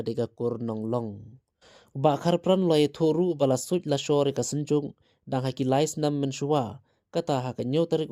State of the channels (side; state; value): both; identical; correlation 1.00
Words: kur nonglong ba Kharpran loi thoru bala suj la shore ka senjung dang haki lais nam menshua kata ha ka nyotarik